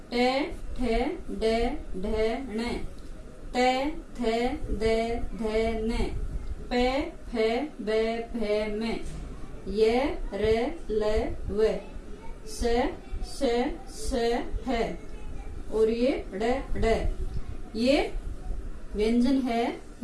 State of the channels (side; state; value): both; identical; correlation 1.00